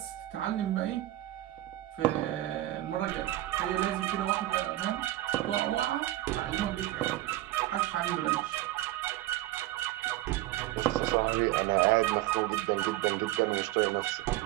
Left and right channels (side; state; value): left; quieter; 15.9 dB